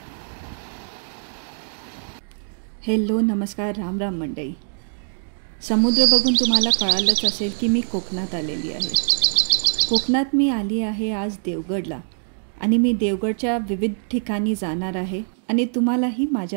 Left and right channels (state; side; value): silent; left; digital silence